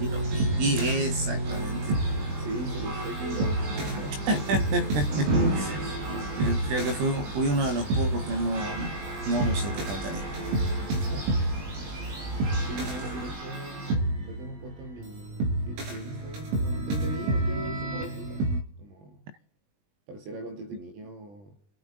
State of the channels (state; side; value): late; left; 20 ms